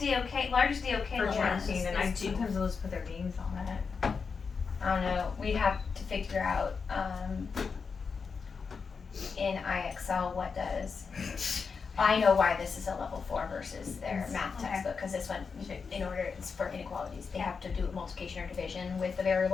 largest DOK for level tracking, and I is 2. sometimes will just put their names on it. I don't know. We'd have to figure out in IXL what does. I know why this is a level 4 versus their math Okay. textbook, because this one, in order, it's for inequalities. They have to do multiplication or division with the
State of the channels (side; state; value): right; quieter; 5.4 dB